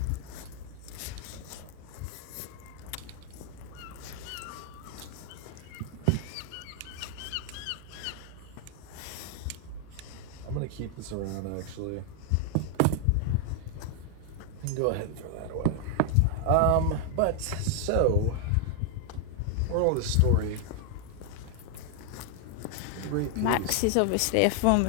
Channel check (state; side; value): different; both; correlation 0.00